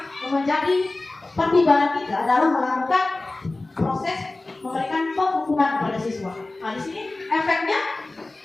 menjadi pertimbangan kita dalam melakukan proses memberikan penghukuman kepada siswa. Nah, di sini efeknya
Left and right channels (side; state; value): right; quieter; 3.0 dB